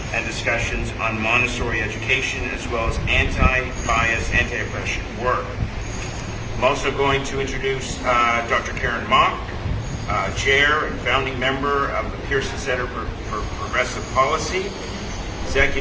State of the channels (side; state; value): both; identical; correlation 1.00